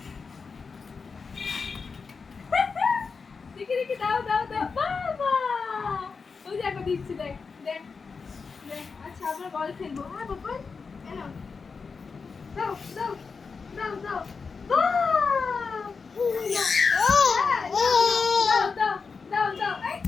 দেখি দেখি দাও দাও দাও বাবা ওই যে একবার দিচ্ছি দেখ দেখ দেখ আচ্ছা আমরা বল খেলবো হ্যাঁ বাবা এনো দাও দাও দাও দাও দাও দাও দাও দাও এই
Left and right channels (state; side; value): quieter; right; 5.0 dB